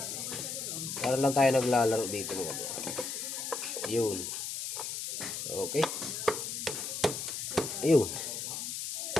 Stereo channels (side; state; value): left; noise; hiss, 4 dB below the sound